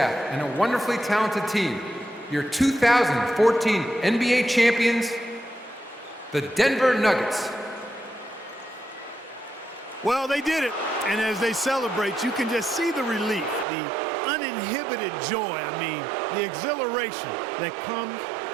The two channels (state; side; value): drops out; left; at 13.7 s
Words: and a wonderfully talented team. Your 2014 NBA champions, the Denver Nuggets. Well, they did it. And as they celebrate, you can just see the relief, the uninhibited joy, the exhilaration that comes